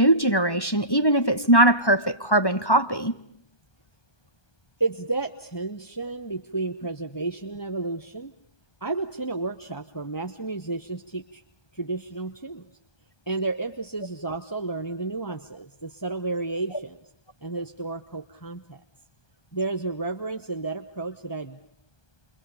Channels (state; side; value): late; right; 1.1 ms